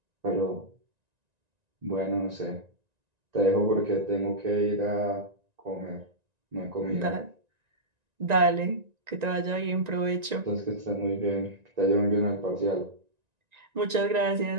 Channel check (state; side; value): late; left; 1.9 ms